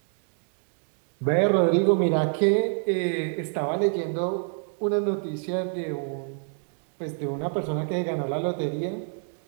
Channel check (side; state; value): left; silent; 56 dB below the other